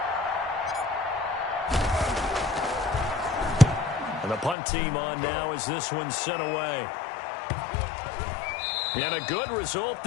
And the punt team on now as this one's sent away. And a good result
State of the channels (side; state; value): right; drops out; at 4.5 s